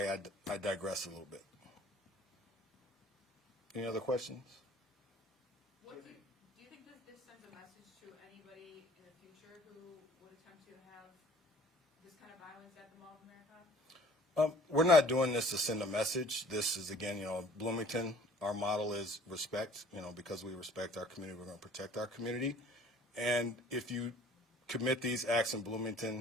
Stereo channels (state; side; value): normal; both; correlation 0.52